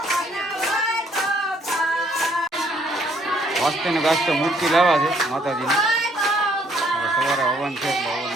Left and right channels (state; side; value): normal; both; correlation 0.66